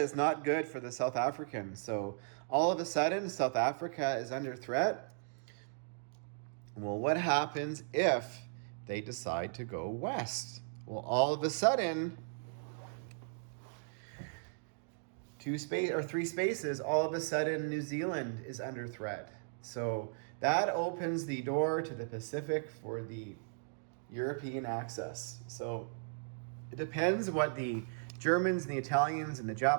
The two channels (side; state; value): left; silent; digital silence